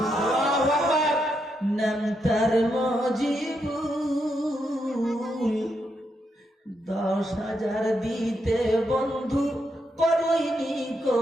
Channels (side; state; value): both; normal; correlation 0.81